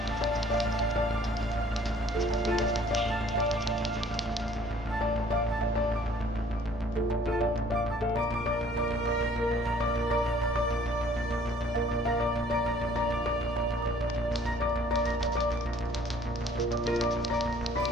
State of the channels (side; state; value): right; noise; rumble, 16 dB below the sound